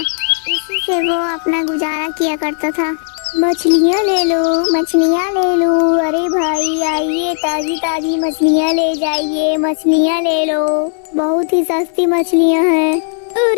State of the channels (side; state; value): right; silent; digital silence